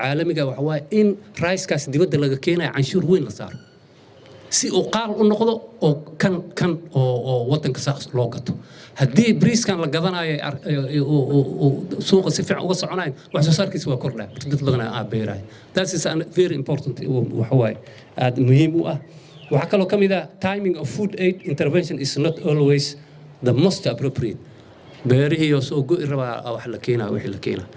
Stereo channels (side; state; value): both; identical; correlation 1.00